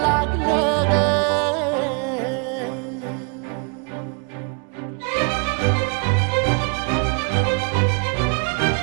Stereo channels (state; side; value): quieter; left; 34.4 dB